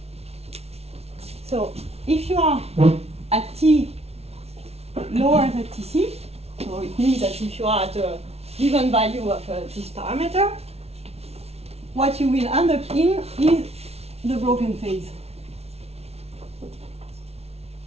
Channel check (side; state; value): left; late; 0.30 ms